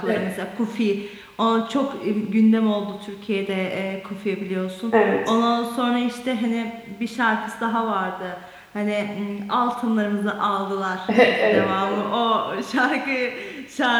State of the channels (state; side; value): identical; both; correlation 1.00